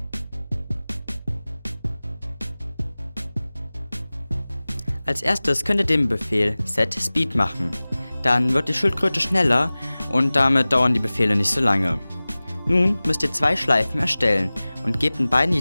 Als erstes könnt ihr den Befehl setSpeed machen. Dann wird die Schildkröte schneller und damit dauern die Befehle nicht so lange. Nun müsst ihr 2 Schleifen erstellen und gebt in beiden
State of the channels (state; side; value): inverted; both; correlation -0.99